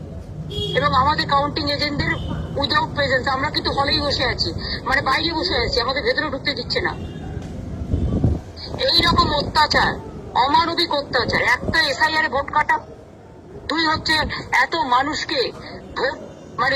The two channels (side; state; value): both; identical; correlation 1.00